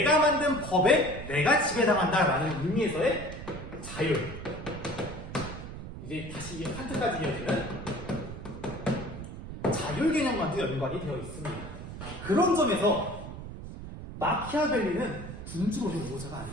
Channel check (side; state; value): right; noise; rumble, 10 dB below the sound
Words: 만든 법에 내가 지배당한다라는 의미에서의 자유. 이제 다시 칸트까지 이어지는 자율 개념과도 연관이 되어 있습니다. 그런 점에서 마키아벨리는 군주로의 우호자가